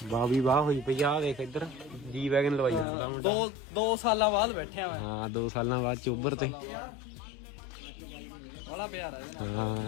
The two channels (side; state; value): right; drops out; at 2.9 s